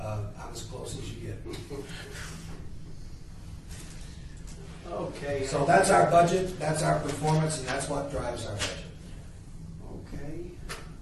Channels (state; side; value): identical; both; correlation 1.00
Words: as close as you get. Okay. So that's our budget, that's our performance, and that's what drives our budget. Okay.